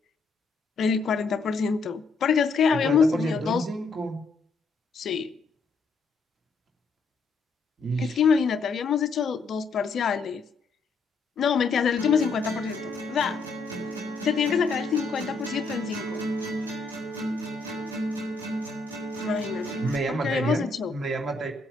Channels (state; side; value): quieter; right; 4.1 dB